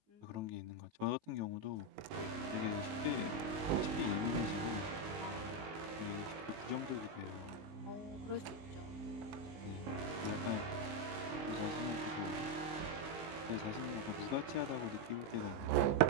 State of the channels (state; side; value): late; left; 19 ms